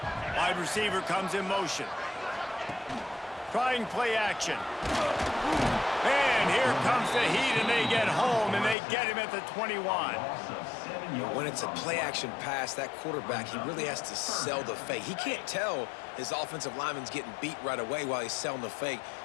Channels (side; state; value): right; drops out; at 8.8 s